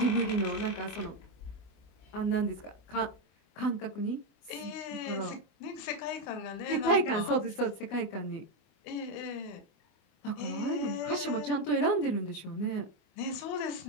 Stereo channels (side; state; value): right; late; 24 ms